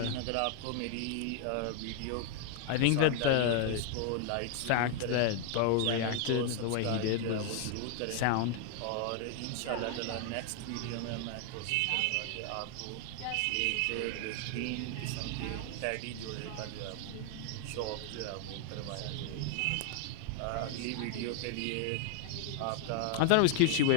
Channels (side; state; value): both; different; correlation 0.00